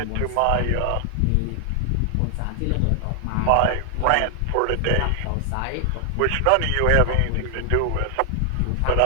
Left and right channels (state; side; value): different; both; correlation 0.00